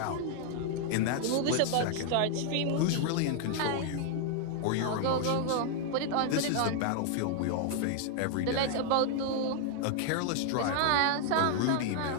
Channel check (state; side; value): different; both; correlation 0.00